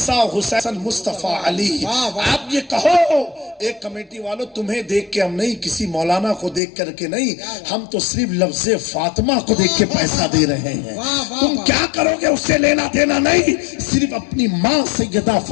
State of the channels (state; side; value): drops out; right; at 6.6 s